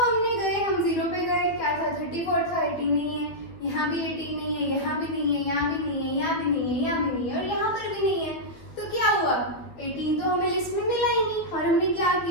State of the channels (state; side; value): late; right; 12 ms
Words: हमने गए, हम 0 पे गए, क्या था 34 था, 18 नहीं है, यहाँ भी 18 नहीं है, यहाँ भी नहीं है, यहाँ भी नहीं है, यहाँ भी नहीं है, यहाँ भी नहीं है और यहाँ पर भी नहीं है। तो क्या हुआ, 18 तो हमें लिस्ट में मिला ही नहीं और हमने क्या